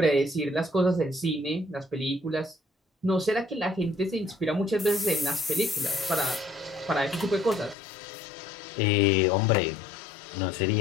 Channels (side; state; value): right; drops out; at 7.8 s